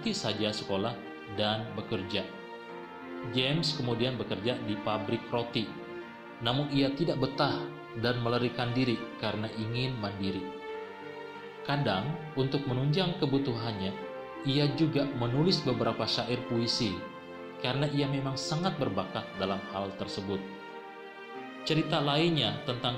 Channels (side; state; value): both; identical; correlation 1.00